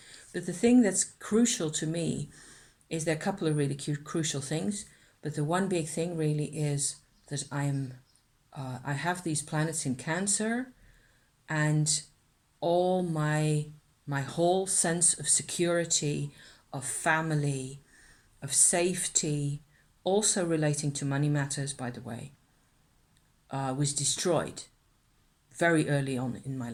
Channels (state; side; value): identical; both; correlation 1.00